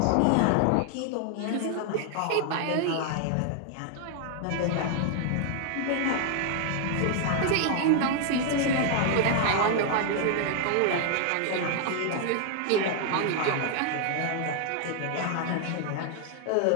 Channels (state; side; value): different; both; correlation 0.00